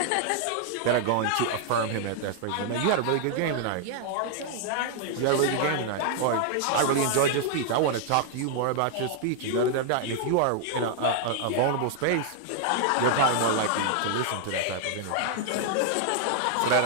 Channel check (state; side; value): different; both; correlation 0.00